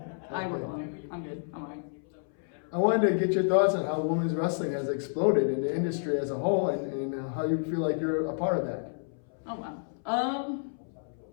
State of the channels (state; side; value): silent; right; 58 dB below the other